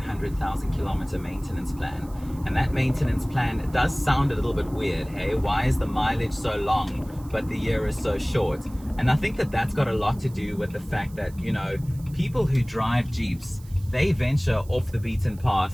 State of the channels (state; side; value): noise; right; hiss, 24 dB below the sound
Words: kilometer maintenance plan. And that maintenance plan does sound a little bit weird, hey? Why is the mileage so long but the year is so short? And I think that that's got a lot to do with the fact that, you know, people who drive Jeeps, they venture off the beaten